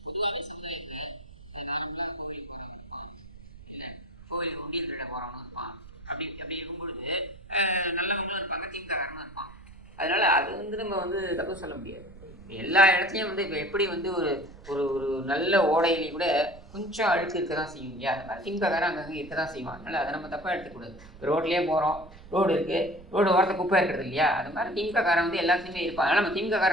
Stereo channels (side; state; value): right; noise; rumble, 19 dB below the sound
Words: கோவில் உண்டியல் திருட போறவனும் இருப்பான், அப்படி இருக்கும்பொழுது நல்லவங்களும் இருப்பாங்க, திமுககாரனும் இருப்பான். அதனால அது வந்து நம்ம வந்து தப்பு சொல்ல முடியாது. எல்லா இடத்துலையும் வந்து இப்போ எப்படி வந்து ஒரு ஒரு ஒரு நல்ல ஓடையிலையும் கூட கொஞ்சம் அழுக்கு இருக்க தான் செய்யும் இல்லையா, அது மாதிரி திமுககாரன் அங்கங்கே இருக்க தான் செய்வான். அதனால் அதை நம்ம தப்பாக எடுத்துக்கூடாது. ரோட்லேயே போகிறோம், ரோடு இருக்குது, ரோடு ஓரத்தை குப்பை இருக்கிறது இல்லையா, அது மாதிரி திமுககாரன் வந்து எல்லாத்துலேயுமே இருப்பான். ஆனால் நம்ம